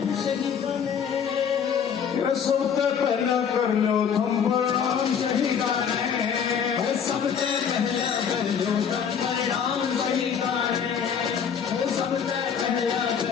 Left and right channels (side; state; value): right; quieter; 7.4 dB